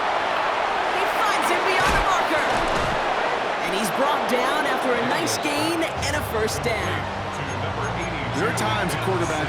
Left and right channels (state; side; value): identical; both; correlation 1.00